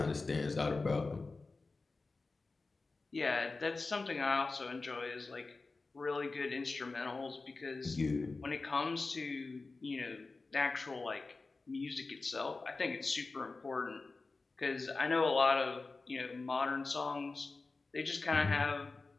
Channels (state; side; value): quieter; right; 3.7 dB